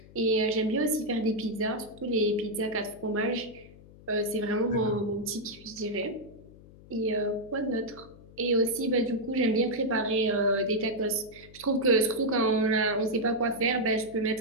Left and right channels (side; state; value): left; noise; hum, 21 dB below the sound